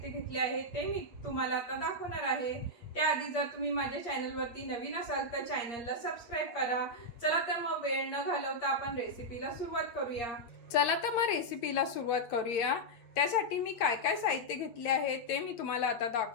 घेतले आहे ते मी तुम्हाला आता दाखवणार आहे। त्याआधी जर तुम्ही माझ्या चॅनलवरती नवीन असाल तर चॅनलला सबस्क्राइब करा। चला तर मग वेळ न घालवता आपण रेसिपीला सुरुवात करूया। चला तर मग रेसिपीला सुरुवात करूया। त्यासाठी मी काय काय साहित्य घेतले आहे ते मी तुम्हाला आता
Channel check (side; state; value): right; late; 8.5 ms